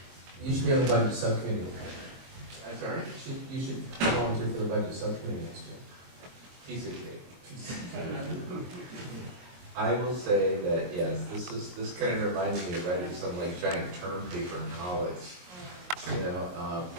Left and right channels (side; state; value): left; late; 22 ms